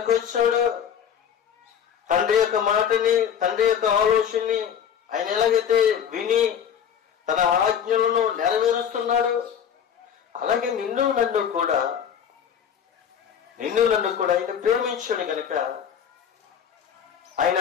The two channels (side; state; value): right; quieter; 8.3 dB